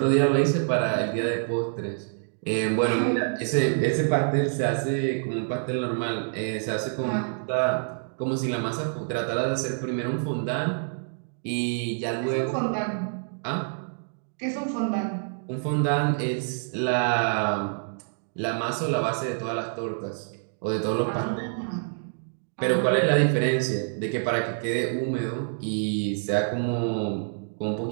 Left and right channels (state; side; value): silent; left; digital silence